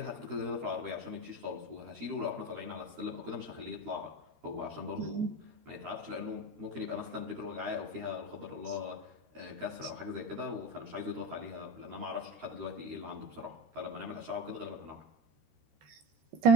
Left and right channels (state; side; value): late; left; 13 ms